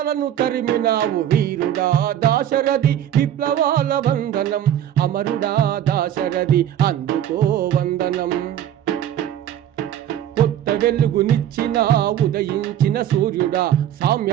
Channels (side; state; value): left; quieter; 10.8 dB